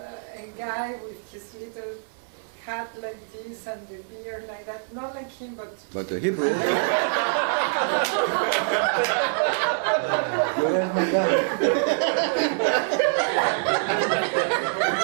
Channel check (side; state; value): left; silent; digital silence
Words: guy with his little hat like this and the beard like that. Not like him, but... But the Hebrew... Where's my gun?